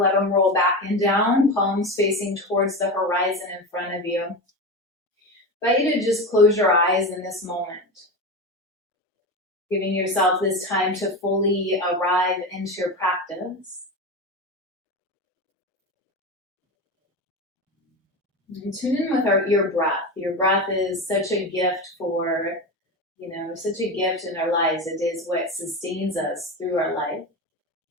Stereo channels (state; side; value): normal; both; correlation 0.22